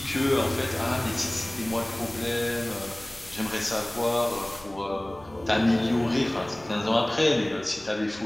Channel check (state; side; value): noise; left; rumble, 23 dB below the sound